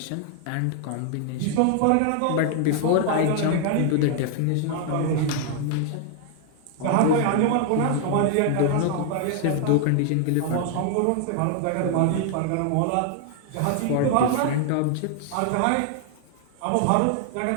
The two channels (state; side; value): different; both; correlation 0.00